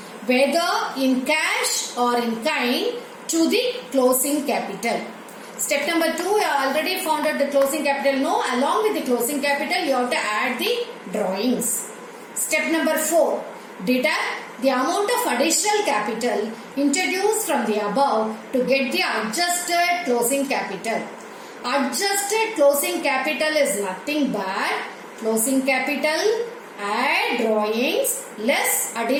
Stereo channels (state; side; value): identical; both; correlation 1.00